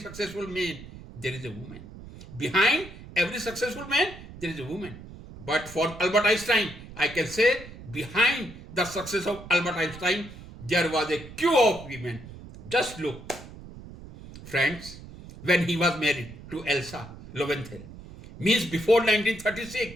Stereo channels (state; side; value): noise; right; rumble, 15 dB below the sound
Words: man there is a woman. Behind every successful man there is a woman. But for Albert Einstein, I can say behind the success of Albert Einstein there was a queue of women. Just look, friends, when he was married to Elsa Lowenthal, means before